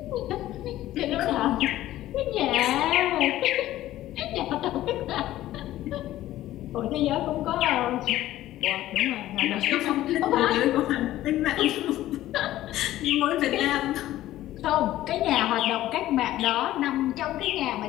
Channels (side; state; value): right; quieter; 14.5 dB